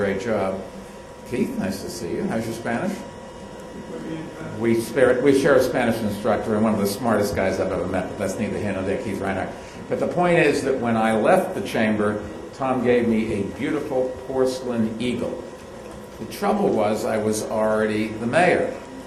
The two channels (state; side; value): identical; both; correlation 1.00